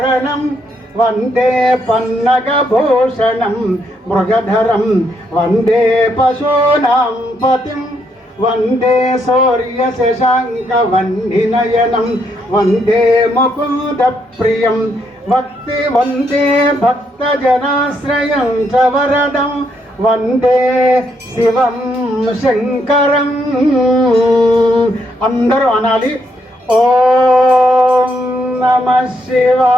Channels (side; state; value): both; normal; correlation 0.76